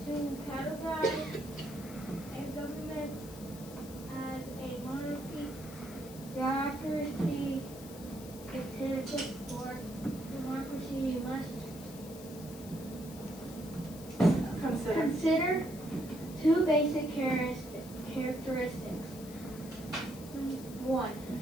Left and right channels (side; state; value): left; noise; hiss, 16 dB below the sound